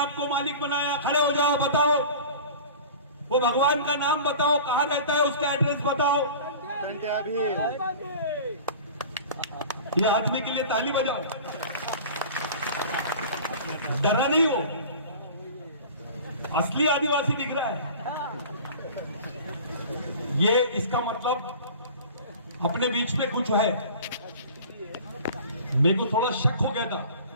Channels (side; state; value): both; inverted; correlation -0.40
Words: मालिक बनाया? खड़े हो जाओ, बताओ वो भगवान का नाम बताओ, कहां रहता है, उसका एड्रेस बताओ। ये आदमी के लिए ताली बजाओ, डरा नहीं हो, असली आदिवासी दिख रहा है। ये इसका मतलब अपने बीच में कुछ है। मेरे को थोड़ा शक हो गया था,